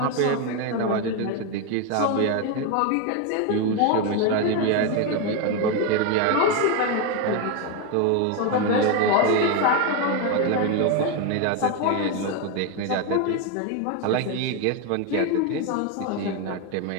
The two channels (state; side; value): different; both; correlation 0.02